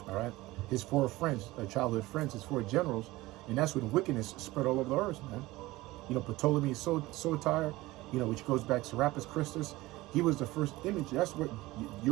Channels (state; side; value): quieter; left; 19.1 dB